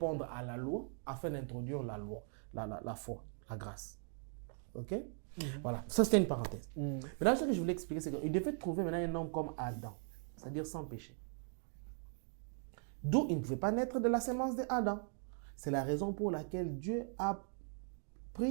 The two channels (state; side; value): silent; left; 51 dB below the other